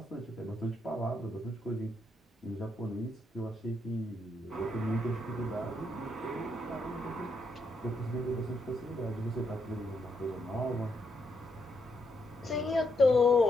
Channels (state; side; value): normal; both; correlation 0.78